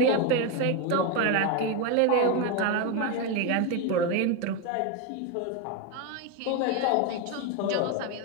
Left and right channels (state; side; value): different; both; correlation 0.03